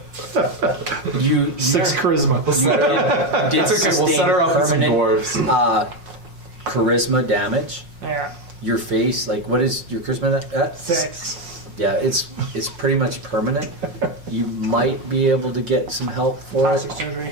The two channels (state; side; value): late; left; 5.5 ms